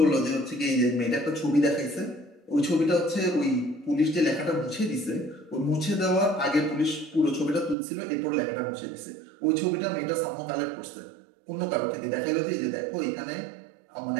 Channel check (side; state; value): left; drops out; at 7.8 s